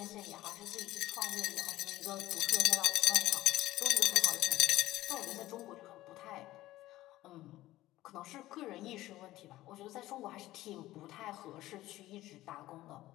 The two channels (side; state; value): right; quieter; 16.1 dB